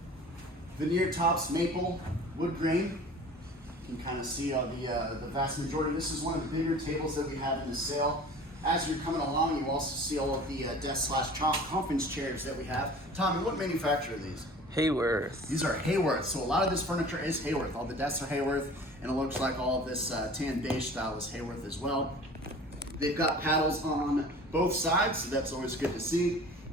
veneer tops, maple, wood grain. You can kind of see the vast majority. This is one of the bigger tables that we have in the sale. As you're coming along, you also see all of the desk/conference chairs that we have. Tommy, what manufacturer are these? Haworth. These are Haworth. So a lot of this furniture is Haworth. All the desks are Haworth, and it looks like all of this tan beige style is Haworth as well. They've got paddles on both sides, so that's always good to see.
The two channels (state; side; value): normal; both; correlation 0.43